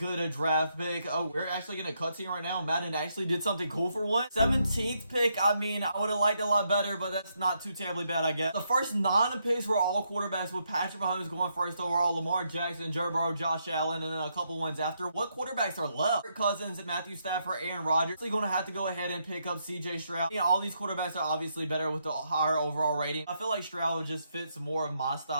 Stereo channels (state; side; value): inverted; both; correlation -0.78